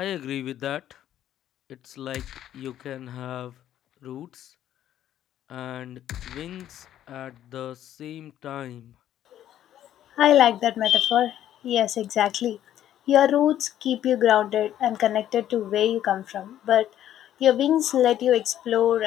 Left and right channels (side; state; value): right; quieter; 11.6 dB